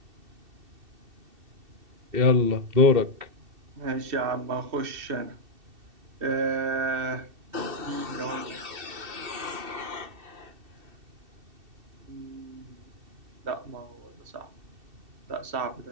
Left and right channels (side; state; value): left; late; 2.7 ms